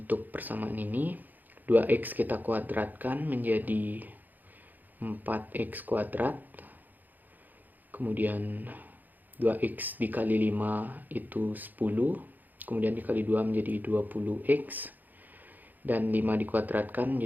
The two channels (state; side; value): late; left; 0.085 ms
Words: untuk persamaan ini 2x kita kuadratkan menjadi 4x kuadrat. Kemudian 2x dikali 5 itu 10. Kemudian dikali 2 menjadi 20x. Dan 5 dikuadratkan